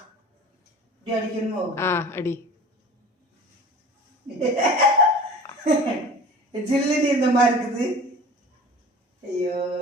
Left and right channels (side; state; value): both; normal; correlation 0.40